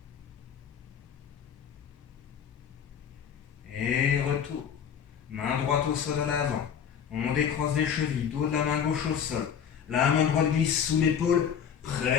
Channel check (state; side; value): quieter; right; 8.0 dB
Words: Et retour. Main droite au sol à l'avant. On décroise les chevilles, dos de la main gauche au sol. La main droite glisse sous l'épaule,